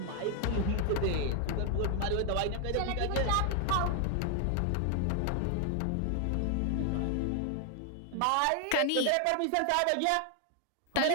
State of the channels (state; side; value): different; both; correlation 0.00